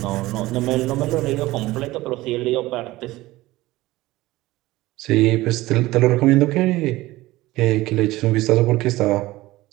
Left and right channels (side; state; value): left; quieter; 18.3 dB